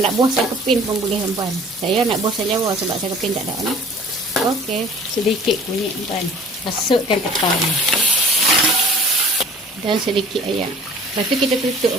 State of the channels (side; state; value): both; normal; correlation 0.48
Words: buah saya kepin pun boleh tuan. Saya nak buah saya Jawa sebab saya kepin tak ada nah. Okey, sedikit kunyit tuan. Masukkan ketan. Dan sedikit ayam. Lepas tu kita tutup